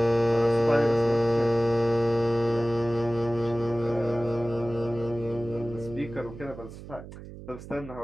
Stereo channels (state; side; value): noise; right; hum, 14 dB below the sound